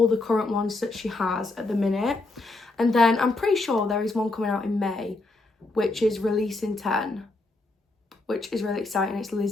the current ones that she has at the minute. And then I'm pretty sure there is one coming out in May, which is Releasing 10, which is really exciting. It's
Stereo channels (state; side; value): quieter; right; 3.2 dB